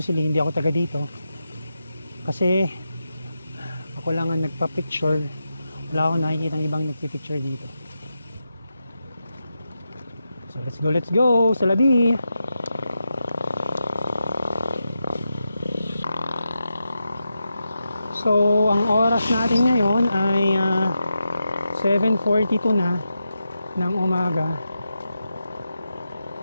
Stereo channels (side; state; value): both; inverted; correlation -0.88